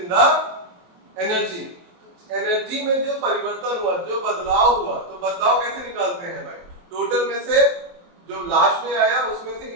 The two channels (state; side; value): late; left; 23 ms